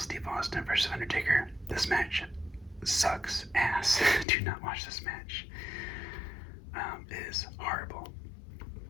Austin versus Undertaker. This match sucks ass. Do not watch this match. It is horrible.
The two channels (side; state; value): right; drops out; at 4.2 s